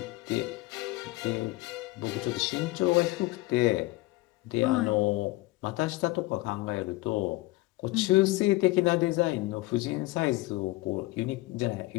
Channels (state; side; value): quieter; right; 20.1 dB